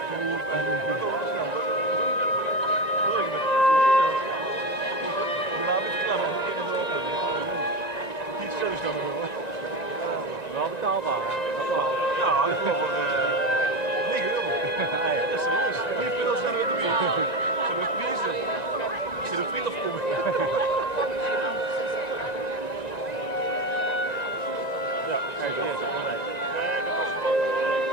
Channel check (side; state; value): right; late; 1.9 ms